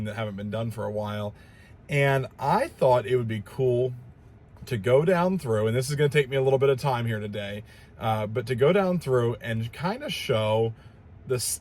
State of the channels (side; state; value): both; identical; correlation 1.00